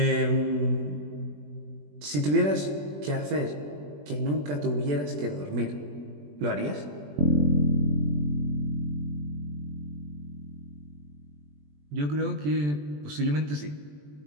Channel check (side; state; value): left; late; 20 ms